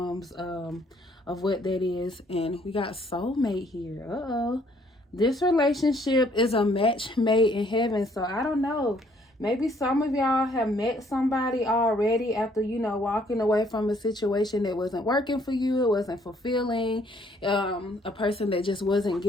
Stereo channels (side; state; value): both; normal; correlation 0.64